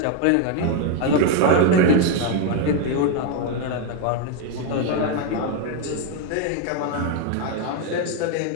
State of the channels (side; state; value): both; different; correlation 0.01